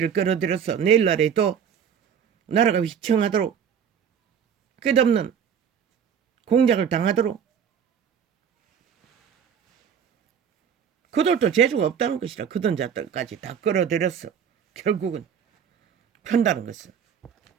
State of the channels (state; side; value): quieter; left; 7.8 dB